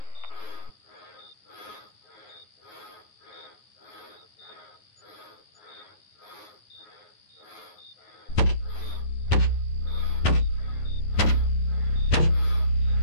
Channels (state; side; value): late; right; 9.7 ms